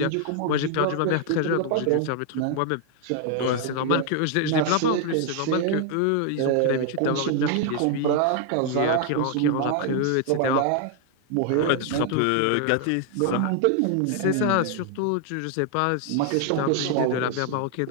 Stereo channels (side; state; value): both; different; correlation 0.00